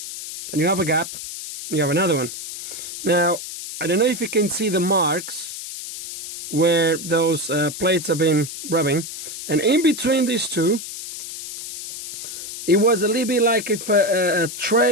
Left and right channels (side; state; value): left; noise; hiss, 9 dB below the sound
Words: Then you have a gap, and you have another one. Now, I don't know if you can see the marks where those plates have been rubbing. And in between these two, it was a little bit like if a